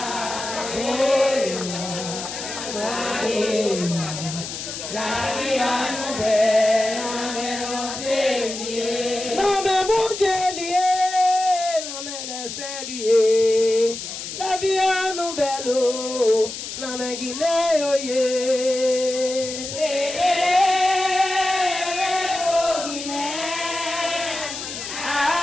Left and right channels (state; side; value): noise; left; hiss, 8 dB below the sound